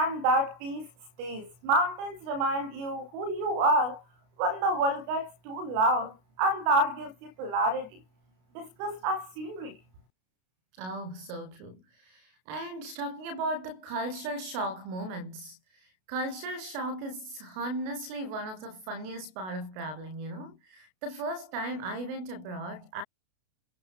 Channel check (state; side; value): late; left; 32 ms